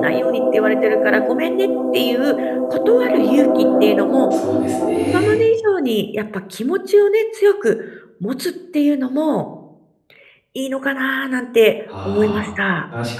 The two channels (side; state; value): both; identical; correlation 1.00